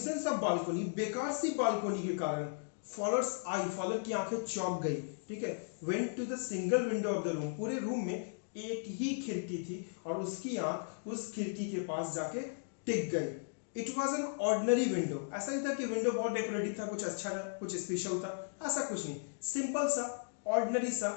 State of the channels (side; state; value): right; silent; digital silence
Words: of balcony, बेकार सी बालकोनी के कारण। फॉलोअर्स आई, फॉलोअर की आंखें चौंक गई। ठीक है, went to the single window of the room, पूरे रूम में एक ही खिड़की थी और उसकी आंख उस खिड़की के पास जाके टिक गई। It was an ordinary window, ऐसा नहीं था कि विंडो बहुत डेकोरेटिव था, कुछ अच्छा था, कुछ स्पेशल था, ऐसा कुछ नहीं, सिंपल सा ऑर्डिनरी